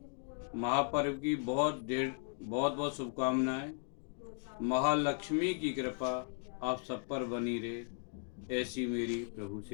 महापर्व की बहुत बहुत शुभकामनाएं। महालक्ष्मी की कृपा आप सब पर बनी रहे, ऐसी मेरी प्रभु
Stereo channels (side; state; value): right; silent; 53 dB below the other